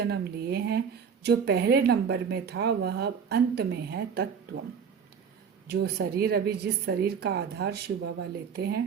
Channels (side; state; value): left; quieter; 6.8 dB